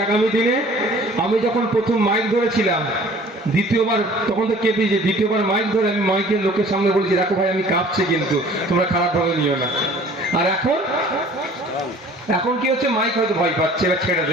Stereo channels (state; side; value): normal; both; correlation 0.50